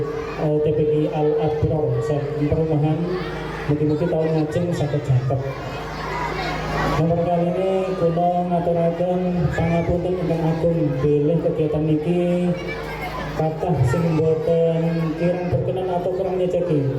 TPQ Al Abrar saking perumahan mugi-mugi tahun ngajeng saged jaket. Nomor kali ini kula ngaturaken pangapunten ingkang agung bilih kegiatan niki kathah sing boten kirang berkenan atau kurang nyeceki.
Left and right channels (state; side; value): identical; both; correlation 1.00